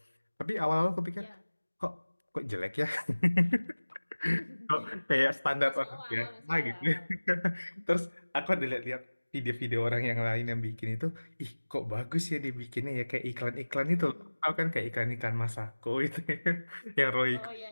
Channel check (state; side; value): inverted; both; correlation -1.00